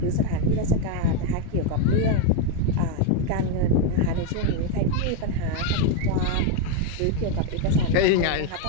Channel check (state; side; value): different; both; correlation 0.02